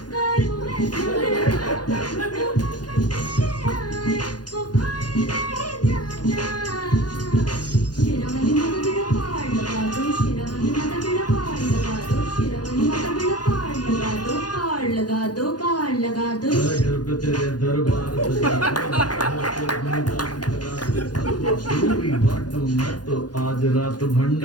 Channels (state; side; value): late; right; 0.69 ms